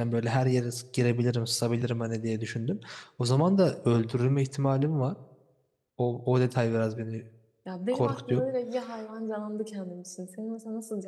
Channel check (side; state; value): both; identical; correlation 1.00